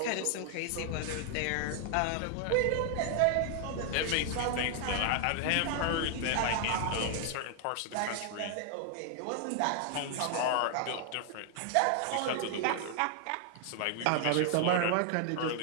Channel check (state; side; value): different; both; correlation 0.00